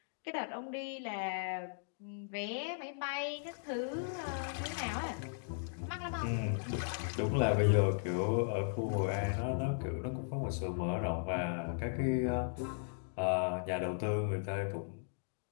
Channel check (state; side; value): silent; right; digital silence